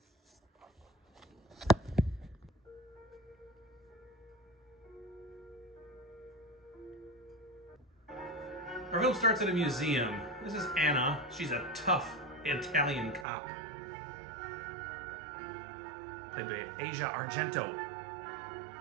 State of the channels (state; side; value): drops out; left; at 13.2 s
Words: Our film starts at a museum. This is Anna. She's a tough Italian cop, played by Asia Argento.